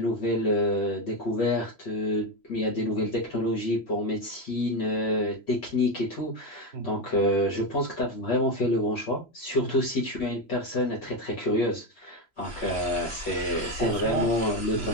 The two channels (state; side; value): late; right; 3.0 ms